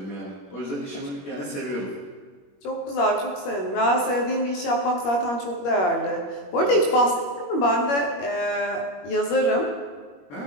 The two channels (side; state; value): right; late; 21 ms